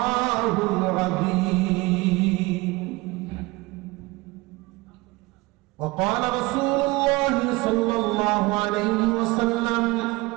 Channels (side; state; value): left; quieter; 22.5 dB